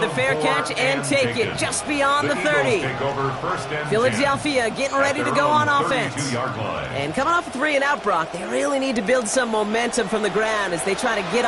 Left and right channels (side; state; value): both; identical; correlation 1.00